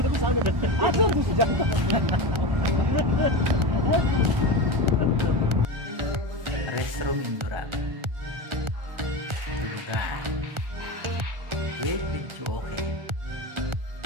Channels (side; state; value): left; late; 1.4 ms